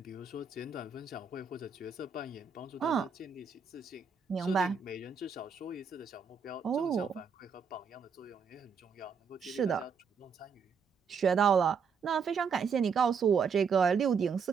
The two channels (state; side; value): quieter; left; 5.8 dB